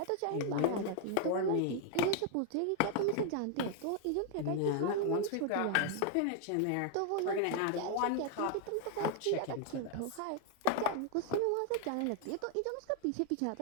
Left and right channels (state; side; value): different; both; correlation 0.00